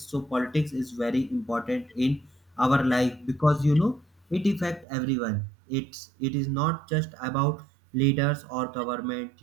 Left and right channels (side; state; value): left; drops out; at 4.9 s